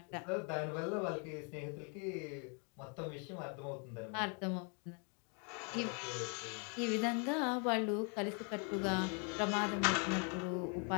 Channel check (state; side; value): quieter; right; 38.3 dB